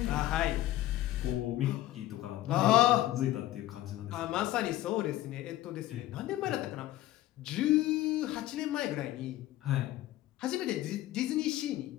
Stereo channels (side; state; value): right; quieter; 15.0 dB